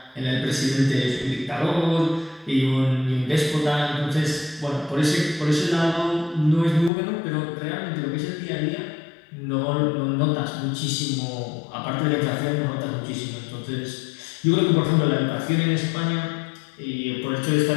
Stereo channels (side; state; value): right; drops out; at 6.9 s